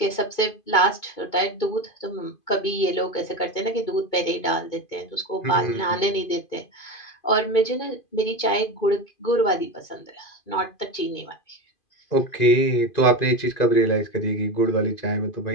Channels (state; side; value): late; right; 2.5 ms